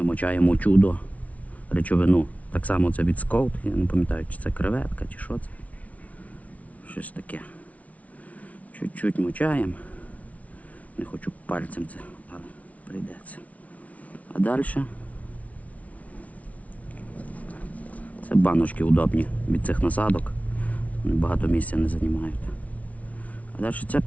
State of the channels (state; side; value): late; right; 0.068 ms